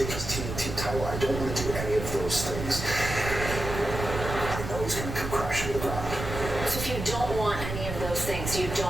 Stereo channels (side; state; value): right; noise; rumble, 6 dB below the sound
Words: his TNT title. I don't want to do any of those things. I know he's going to come crashing to the ground. So if you don't want any of those things, you